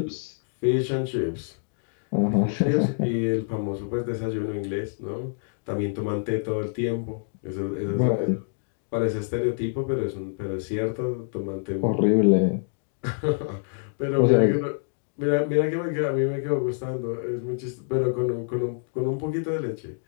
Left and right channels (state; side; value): silent; right; digital silence